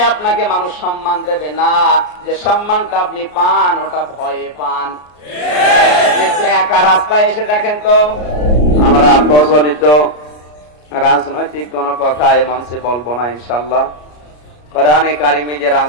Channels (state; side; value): late; right; 33 ms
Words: আপনাকে মানুষ সম্মান দেবে না, যে সম্মানটা আপনি পান ওটা ভয়ে পান। একা রাস্তায় এসে দেখেন তো, আমরা প্রচলিত রাজনৈতিক কোন কথা এ মঞ্চে বলবো না ইনশাল্লাহ। কোরআনে কারিমে যে